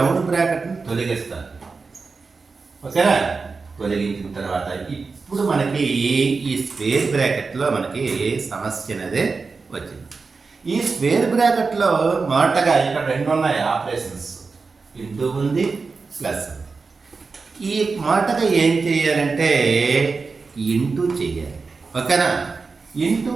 బ్రాకెట్ని తొలగిస్తాను. ఓకేనా, తొలగించిన తర్వాత ఇప్పుడు మనకి ఈ స్క్వేర్ బ్రాకెట్లో మనకి సమస్య అనేది వచ్చింది. ఈ స్క్వేర్ బ్రాకెట్లో మొదటగా ఇక్కడ 2 ఉన్నాయి ఆపరేషన్స్, ఇంటూ ఉంది, ప్లస్ ఉంది. ఈ మొదటగా ఏం చేయాలంటే ఇంటూ చేయాలి. ఓకేనా. ఇంటూ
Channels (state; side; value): quieter; left; 4.4 dB